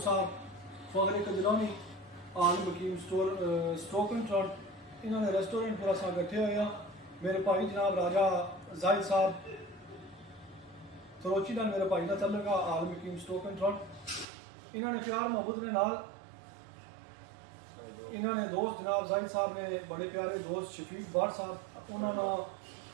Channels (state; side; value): drops out; left; at 14.2 s